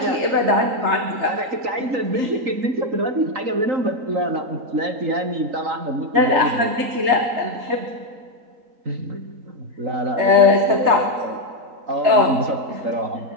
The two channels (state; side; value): late; left; 3.9 ms